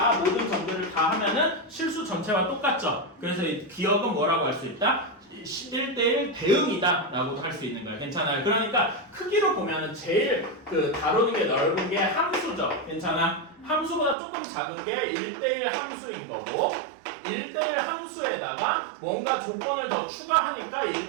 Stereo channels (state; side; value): drops out; left; at 14.2 s